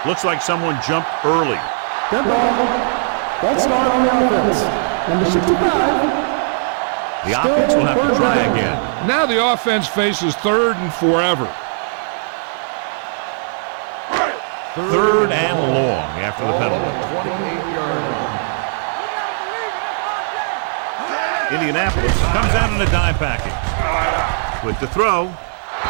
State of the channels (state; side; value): silent; left; digital silence